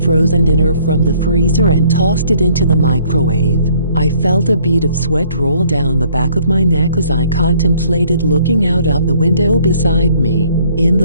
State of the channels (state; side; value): inverted; both; correlation -0.61